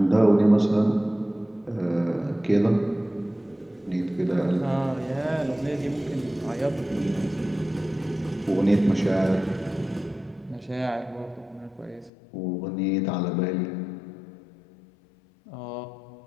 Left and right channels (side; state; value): right; drops out; at 12.1 s